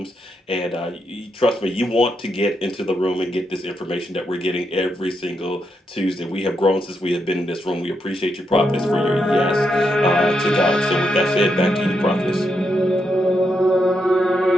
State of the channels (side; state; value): both; normal; correlation 0.82